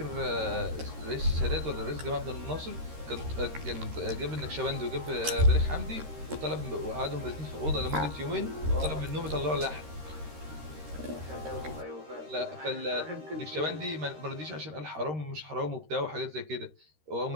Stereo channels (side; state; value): left; late; 13 ms